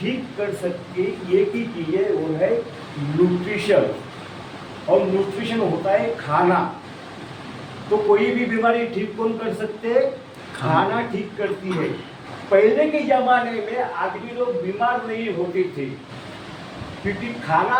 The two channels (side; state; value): both; identical; correlation 1.00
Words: कर सकती है, एक ही चीज़ है, वो है न्यूट्रिशन। और न्यूट्रिशन होता है खाना। तो कोई भी बीमारी ठीक कौन कर सकते हैं? खाना ठीक करती है। पहले के ज़माने में आदमी लोग बीमार नहीं होते थे क्योंकि खाना